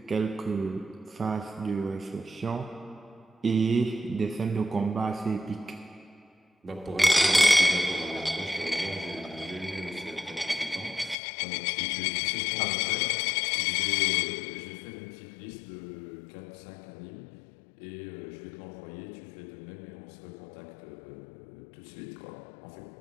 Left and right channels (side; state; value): right; drops out; at 11.2 s